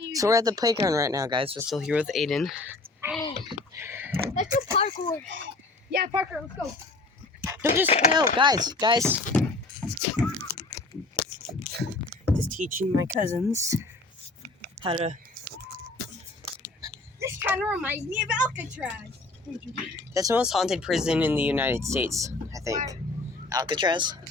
you... So we're at the playground right now, guys. We're still here with Aiden. Let's do parkour. Yeah, parkour, let's go. No, guys. Just teaching my cousins how to... This kind of reminds me of Alcatraz. That's the most haunted prison in the United States, I think. Why? Alcatraz.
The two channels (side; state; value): right; quieter; 3.2 dB